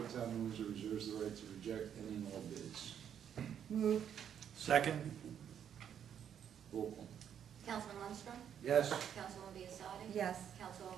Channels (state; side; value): quieter; left; 8.9 dB